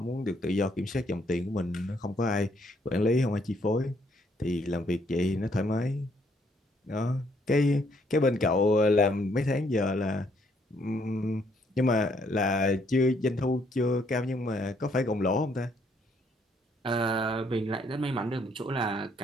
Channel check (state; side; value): normal; both; correlation 0.69